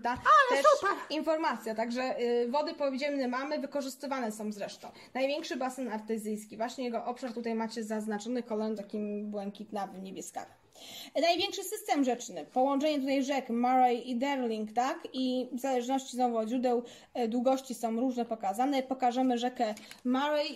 też informacja. Także wody podziemne mamy, wykorzystywane są zresztą. Największy basen artezyjski, właśnie jego obszar tutaj macie zaznaczony kolorem takim błękitnawym, niebieskawym. Największy system rzeczny, połączenie tutaj rzek Murray i Darling, tak? I w zależności znowu od źródeł długości są różne pokazane. Pokażemy rzekę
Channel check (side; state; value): both; identical; correlation 1.00